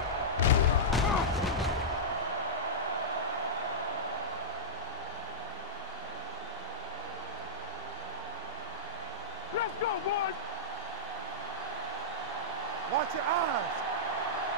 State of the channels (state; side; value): normal; both; correlation -0.13